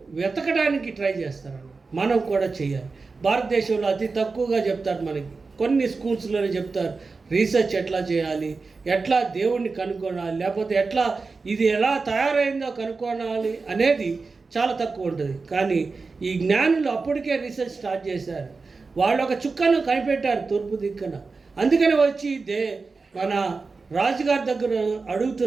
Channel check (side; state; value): left; quieter; 4.2 dB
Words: వెతకడానికి ట్రై చేస్తారు. మనం కూడా చేయాలి. భారతదేశంలో అతి తక్కువగా చెప్తారు మనకి కొన్ని స్కూల్స్లోనే చెప్తారు రీసెర్చ్ ఎట్లా చేయాలి, ఎట్లా దేవుణ్ణి కనుక్కోవాలి, లేకపోతే ఎట్లా ఇది ఎలా తయారైందో కనుక్కోవాలి అనేది చాలా తక్కువ ఉంటుంది. కానీ ఈ జ్ఞానులు అప్పటికే రీసెర్చ్ స్టార్ట్ చేశారు. వాళ్ళు ఒక చుక్కను కనిపెట్టారు తూర్పు దిక్కున. అందుకని వచ్చి మన రాజుగారి దగ్గర